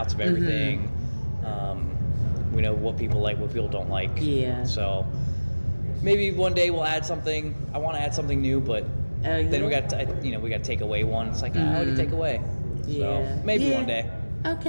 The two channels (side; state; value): both; inverted; correlation -1.00